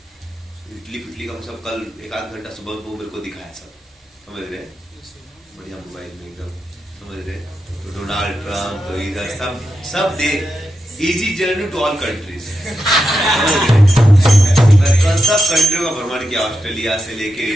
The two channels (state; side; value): normal; both; correlation 0.88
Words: इटली पिटली का सब कल 1-8 घंटा सुबह को मेरे को दिखाया सब, समझ रहे, बढ़िया मोबाइल में एकदम, समझ रहे। तो डोनाल्ड ट्रम्प तो इधर सब दे easy journey to all countries, कल सब कंट्रियों का भ्रमण किया, ऑस्ट्रेलिया से लेके